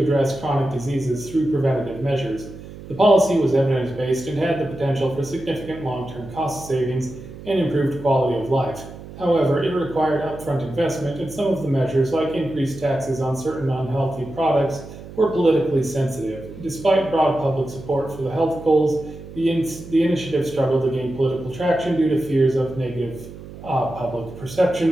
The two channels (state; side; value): noise; right; hum, 15 dB below the sound